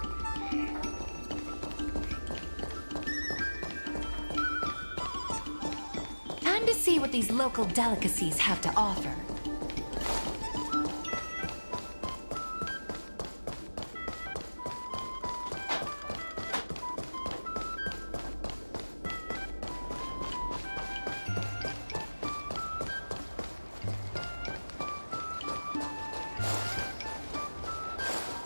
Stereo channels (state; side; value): inverted; both; correlation -1.00